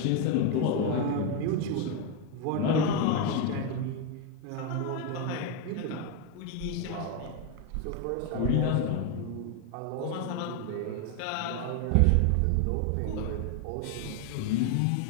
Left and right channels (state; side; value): different; both; correlation 0.02